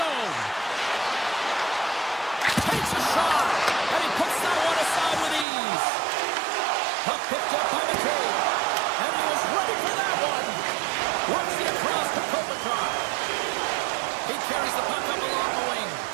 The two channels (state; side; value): drops out; left; at 5.5 s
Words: Takes a shot. And he puts that one aside with ease. Puck picked up by McCabe. And he was ready for that one. Works the across to Kopitar. He carries the puck up along the wing.